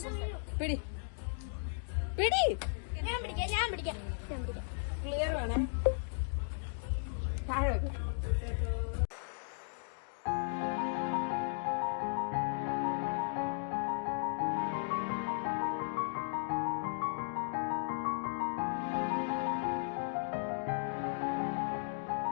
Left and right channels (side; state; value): right; silent; digital silence